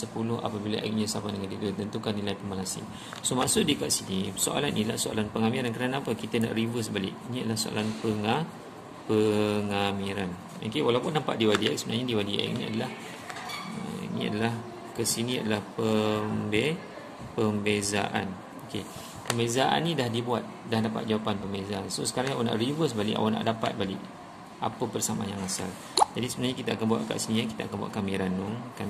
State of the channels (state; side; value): identical; both; correlation 1.00